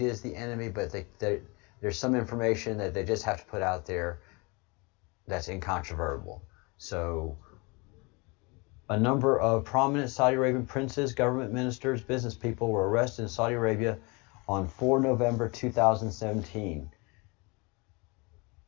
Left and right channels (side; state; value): right; quieter; 28.3 dB